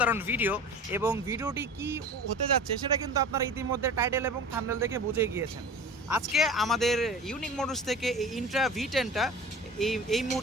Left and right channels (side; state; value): both; normal; correlation 0.37